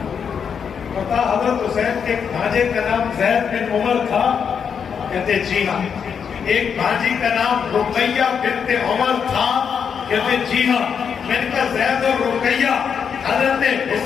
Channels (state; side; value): quieter; right; 7.0 dB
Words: پتا حضرت حسین کے ایک بھانجے کا نام زید بن عمر تھا کہتے جی ہاں ایک بھانجی کا نام رقیہ بنت عمر تھا کہتے جی ہاں میں نے کہا زید اور رقیہ حضرت